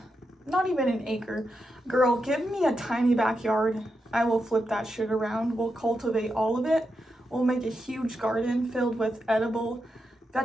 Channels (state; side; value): normal; both; correlation 0.86